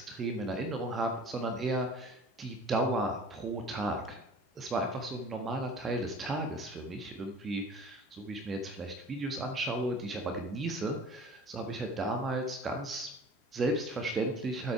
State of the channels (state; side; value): normal; both; correlation 0.44